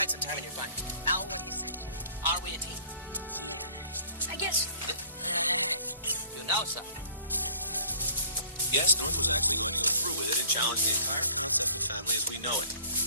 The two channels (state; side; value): inverted; both; correlation -0.55